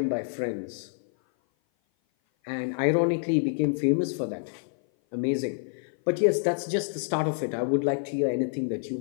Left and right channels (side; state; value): right; silent; 56 dB below the other